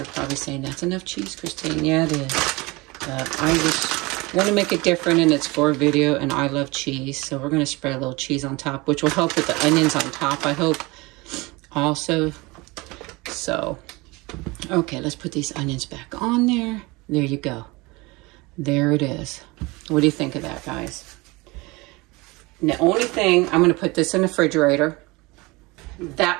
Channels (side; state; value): left; quieter; 23.9 dB